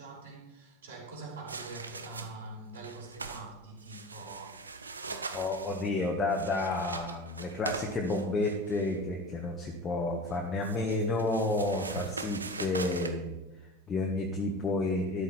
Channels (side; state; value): both; normal; correlation 0.34